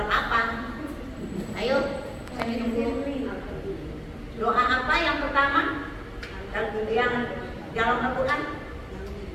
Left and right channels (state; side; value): identical; both; correlation 1.00